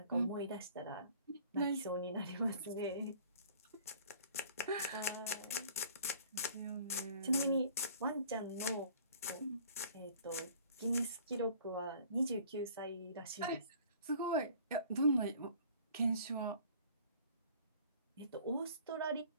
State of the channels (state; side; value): inverted; both; correlation -0.51